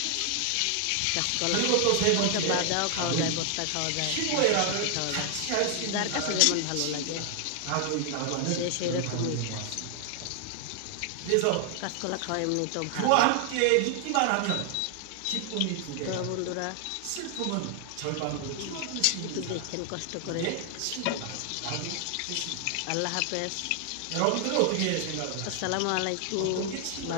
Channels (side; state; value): both; different; correlation 0.00